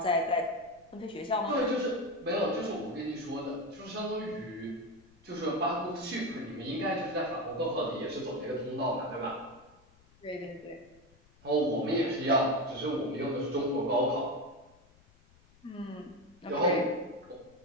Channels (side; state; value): left; noise; rumble, 28 dB below the sound